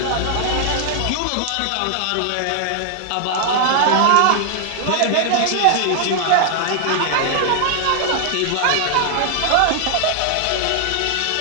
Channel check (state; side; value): different; both; correlation 0.00